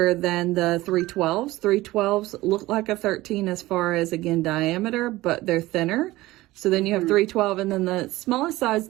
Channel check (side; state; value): left; quieter; 18.1 dB